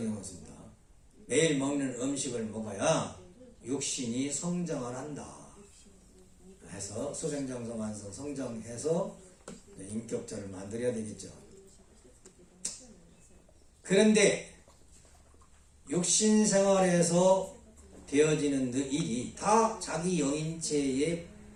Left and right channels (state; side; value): identical; both; correlation 1.00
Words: 매일 먹는 음식을 먹어야 육신이 성장을 한다. 해서 수생장성 완성 성장해서 인격자를 만들어야 되겠죠. 그런데 육신 생활에서 되어지는 일이 다 자기 영인체에